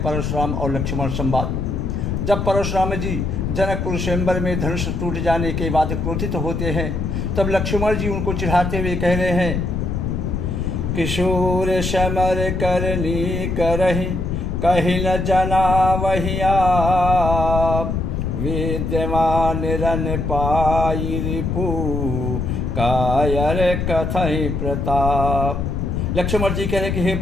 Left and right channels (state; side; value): noise; left; rumble, 1 dB below the sound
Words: और लक्ष्मण संवाद। जब परशुराम जी जनकपुर स्वयंवर में धनुष टूट जाने के बाद क्रोधित होते हैं, तब लक्ष्मण जी उनको चिढ़ाते हुए कह रहे हैं, किशोर समर करनी करहि कहीं न जना वही आप, विद्यमान रन पाई रिपु कायर कथई प्रताप। लक्ष्मण जी कह रहे कि हे